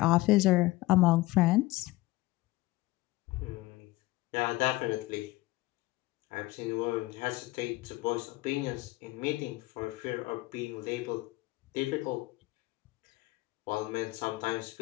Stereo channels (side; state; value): right; quieter; 19.5 dB